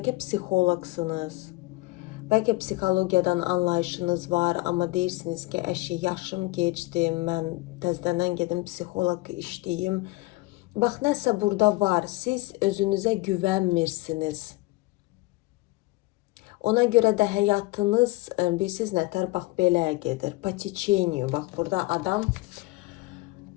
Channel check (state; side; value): quieter; right; 21.5 dB